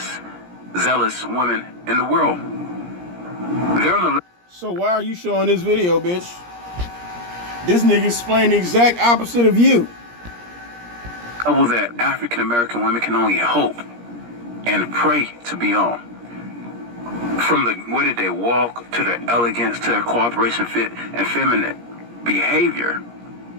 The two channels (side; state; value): left; late; 17 ms